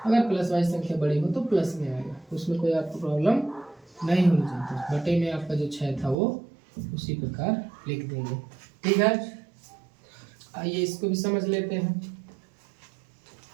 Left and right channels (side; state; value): left; drops out; at 6.2 s